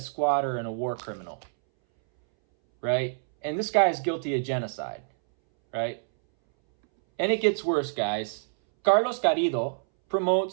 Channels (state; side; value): silent; left; 60 dB below the other